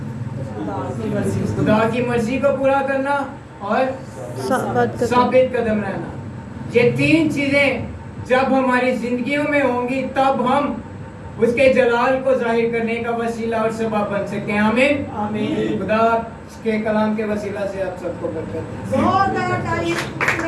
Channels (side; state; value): both; identical; correlation 1.00